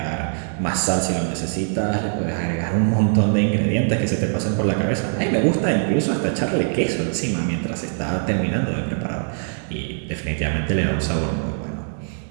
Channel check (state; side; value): silent; left; digital silence